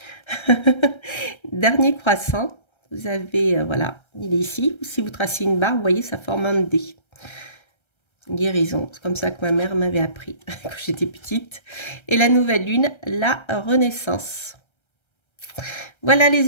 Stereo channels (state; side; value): late; right; 1.3 ms